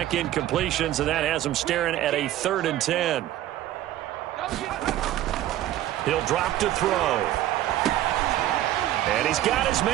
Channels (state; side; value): quieter; left; 13.5 dB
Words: incompletions, and that has him staring at a 3rd and 10. He'll drop to throw. And he's got his